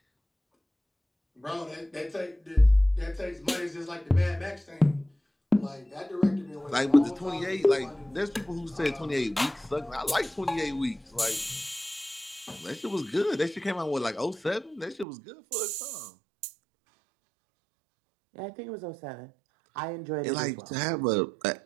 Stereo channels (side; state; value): left; drops out; at 15.1 s